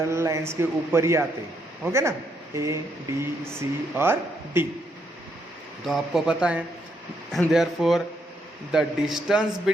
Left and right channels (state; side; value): normal; both; correlation 0.76